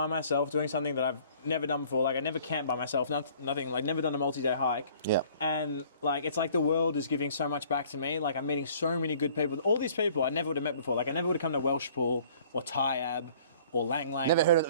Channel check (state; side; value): inverted; both; correlation -0.54